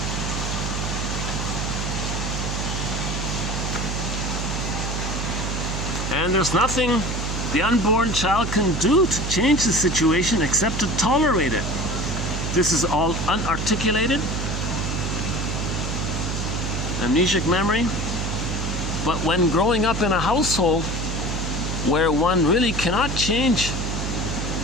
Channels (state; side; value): noise; right; hum, 2 dB below the sound